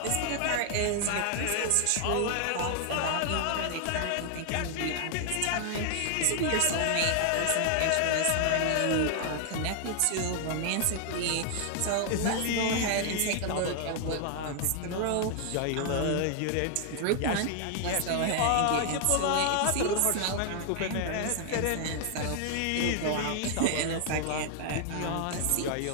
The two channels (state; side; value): different; both; correlation 0.00